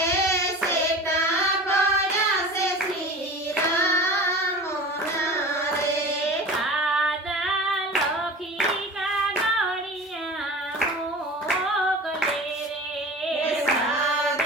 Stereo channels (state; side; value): normal; both; correlation 0.36